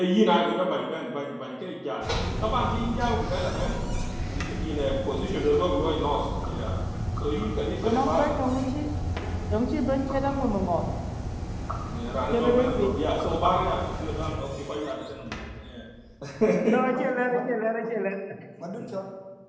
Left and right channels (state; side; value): identical; both; correlation 1.00